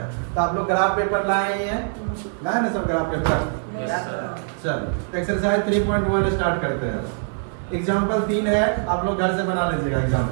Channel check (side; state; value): left; silent; 63 dB below the other